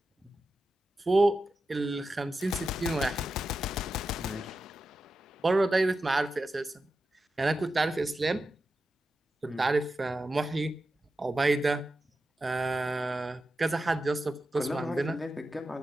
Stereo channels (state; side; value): normal; both; correlation 0.91